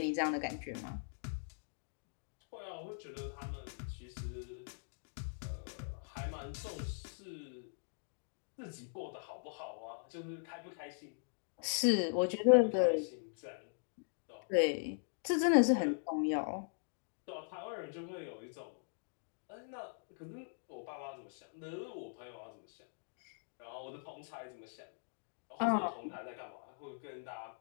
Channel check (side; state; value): right; silent; digital silence